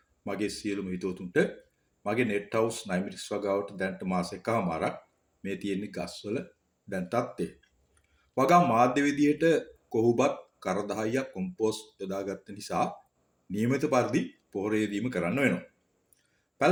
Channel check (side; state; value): both; identical; correlation 1.00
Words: මගේ සියලුම හිතවතුන්ට. මගේ නෙට් හවුස් 9 මිනිස් වගාවට දැන්ට මාස එකමාරක් මේ තියෙන්නේ ගස්වල දැන් තත්ත්වය. වගා මාධ්‍ය විදියට කොහොබත් කර 10ක් කොම්පෝස්ට් යොදාගත්ත නිසා නියමිත පරිදි පොහොර යෙදීම කරන්න වෙනවා.